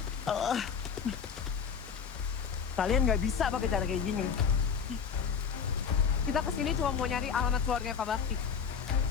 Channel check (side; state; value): right; quieter; 6.7 dB